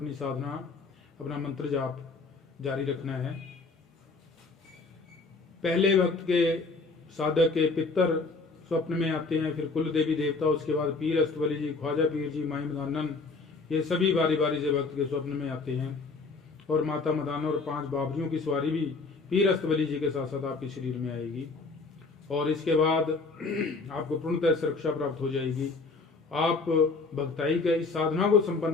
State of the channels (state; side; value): quieter; right; 4.0 dB